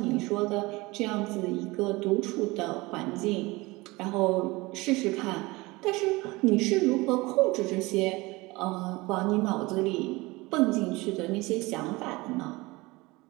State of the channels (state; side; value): quieter; left; 22.4 dB